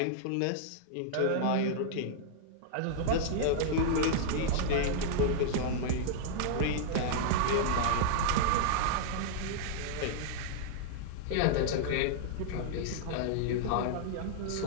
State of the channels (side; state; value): both; different; correlation -0.01